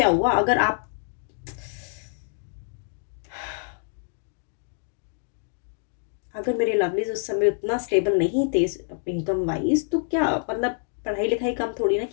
हुआ अगर आप अगर मेरे लवलीज उस समय उतना स्टेबल नहीं थे इनकम वाइज, तो क्या मतलब पढ़ाई लिखाई कम थोड़ी ना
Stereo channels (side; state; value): right; silent; digital silence